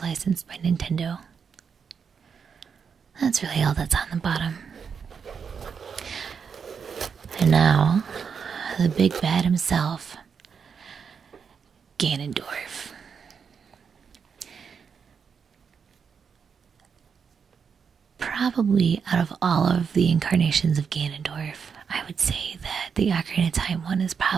by Nintendo. That's really all that's on the bottom. And now, the big bad himself, Ganondorf. Probably out of all of the incarnations of Ganondorf, I would say that the Ocarina of Time one is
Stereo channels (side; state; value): left; quieter; 6.4 dB